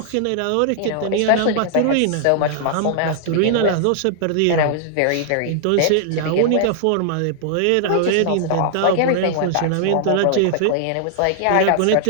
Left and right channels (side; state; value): both; different; correlation -0.01